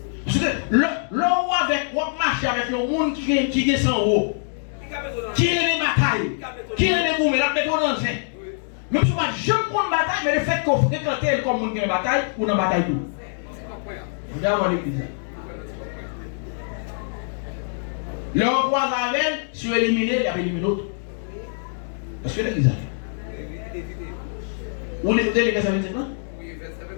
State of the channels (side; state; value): right; silent; digital silence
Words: Parce que l'on avec ou marcher avec le monde qui est sans eau. Qui est les batailles. Qui est les gourmets la méthode dans le même si je ne prends bataille mais le fait qu'on fréquente comme monde qui est bataille ou dans bataille tout. Vous avez l'église. Le roi avec si vous éliminez, il y a éliminé l'autre. Est-ce que l'église a? Vous l'écoutez les versets 25 ans? Oui, verset